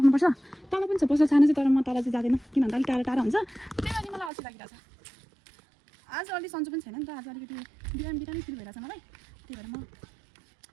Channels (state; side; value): drops out; left; at 4.3 s